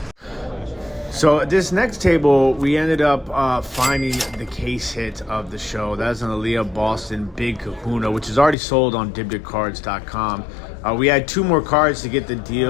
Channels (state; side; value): drops out; right; at 8.6 s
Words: So this next table, we ended up finding the case hit of the show. That's an Aaliyah Boston Big Kahuna, which is already sold on dibditcards.com. We had two more cards to get the